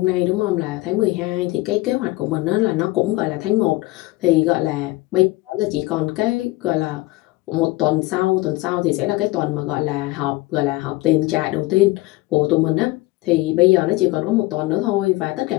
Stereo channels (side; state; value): right; quieter; 20.5 dB